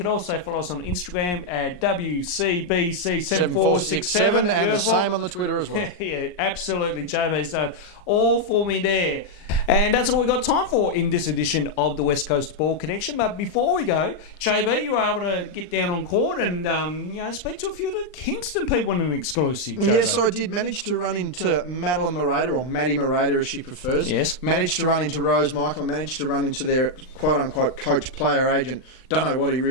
also follow us on Instagram at WCBC7467. And the same on the Twitter as well. Yeah, absolutely. JB's done all for me there. And that's all we've got time for in this edition of the West Coast Ball Connection. But before we go, JB, you were able to get down on court and speak to a few of the Kingston people in an exclusive. JB. Yes, I did manage to run into Madeline Morata, or Maddie Morata as she prefers. Yes. Managed to run into Rose Michael, and managed to run into their quote-unquote coach, player agent. Don't know what he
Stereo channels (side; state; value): right; late; 39 ms